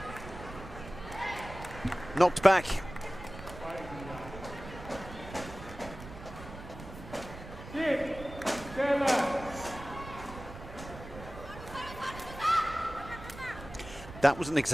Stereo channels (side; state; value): right; noise; rumble, 13 dB below the sound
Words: knocked back. That was an